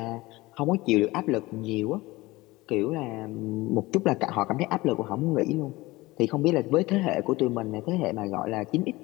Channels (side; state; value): right; quieter; 20.4 dB